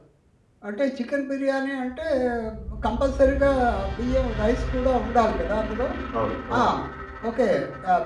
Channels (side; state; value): both; identical; correlation 1.00